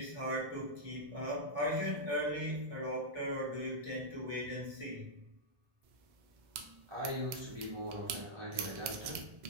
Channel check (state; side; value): late; left; 2.0 ms